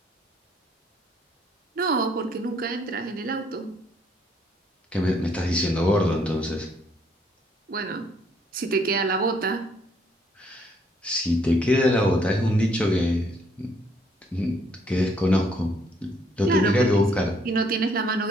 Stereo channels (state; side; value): normal; both; correlation 0.67